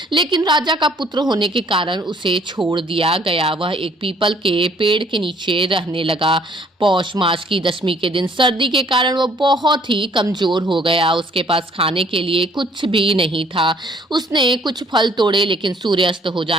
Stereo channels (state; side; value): normal; both; correlation 0.60